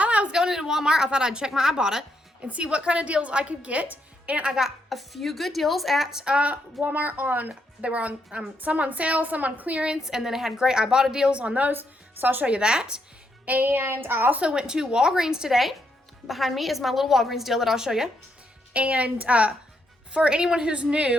I was going into Walmart, I thought I'd check my Ibotta and see what kind of deals I could get. And I got a few good deals at Walmart. They were on some on sale, some on clearance, and then it had great Ibotta deals on those. So I'll show you that. And I also went to Walgreens today. Behind me is my little Walgreens deal that I'll show you. And for anyone who's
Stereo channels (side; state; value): both; normal; correlation 0.78